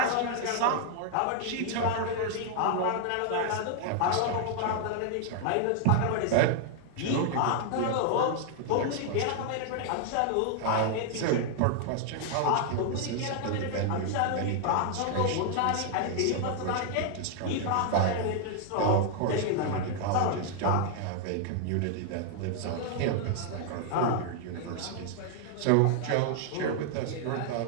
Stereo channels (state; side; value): different; both; correlation 0.00